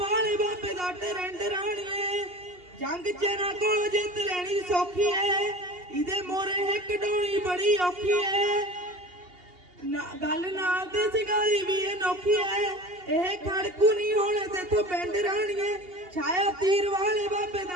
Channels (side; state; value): left; late; 2.8 ms